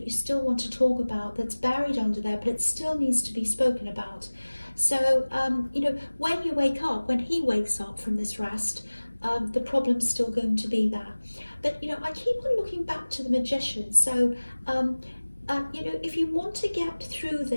you still want to talk about, that's buried under there, but it still needs to be spoken about. So, you know, when you wake up, when he wakes up from this rest, the problem's still going to be there. But, you know, I keep on looking back to the Magician. So, you know, if you want to get through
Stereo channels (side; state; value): both; inverted; correlation -1.00